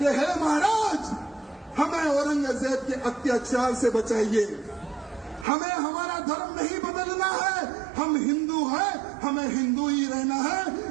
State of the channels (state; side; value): drops out; left; at 5.5 s